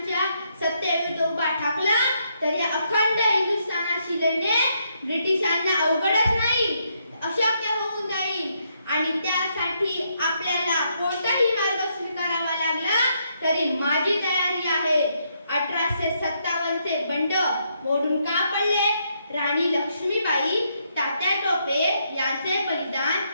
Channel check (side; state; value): both; inverted; correlation -0.76